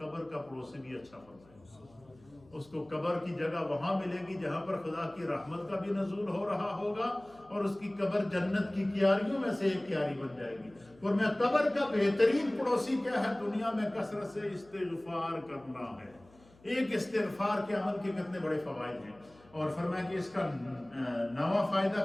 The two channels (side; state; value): left; noise; hum, 27 dB below the sound